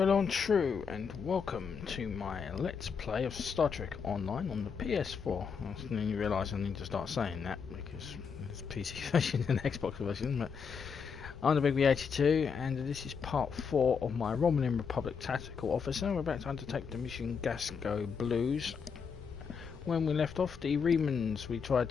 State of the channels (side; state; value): right; quieter; 6.1 dB